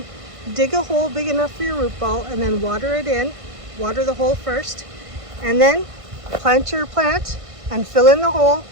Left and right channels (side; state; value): left; late; 1.5 ms